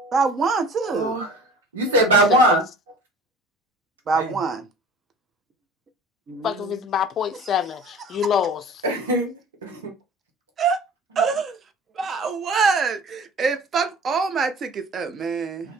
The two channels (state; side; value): normal; both; correlation 0.43